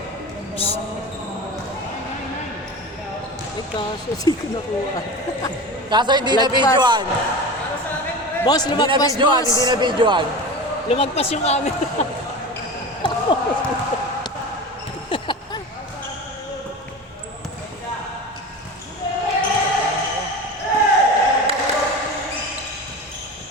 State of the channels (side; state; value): both; normal; correlation 0.30